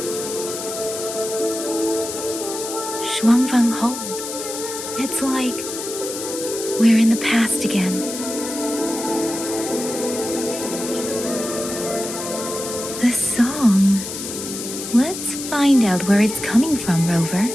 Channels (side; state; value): left; noise; hiss, 7 dB below the sound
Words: Shuangfeng Hold. It's like we're in the past again. The song. Let's find out where it's coming from, Rover.